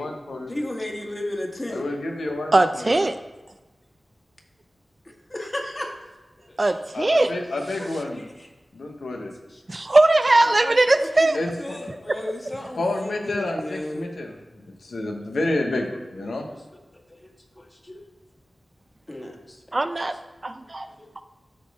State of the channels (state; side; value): normal; both; correlation 0.97